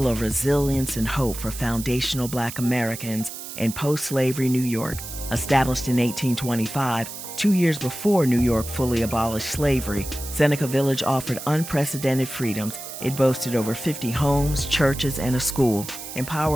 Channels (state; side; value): noise; right; hiss, 10 dB below the sound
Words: of resilience and hope for foundational Black Americans in post-slavery New York. Established in 1825, 2 years before New York fully abolished slavery, Seneca Village offered unprecedented freedoms. It boasted over 50 homes, churches, and a school,